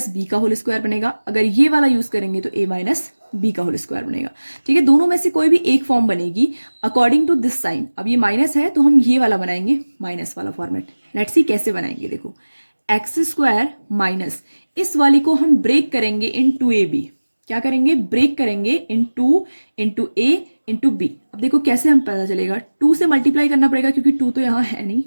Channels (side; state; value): both; inverted; correlation -1.00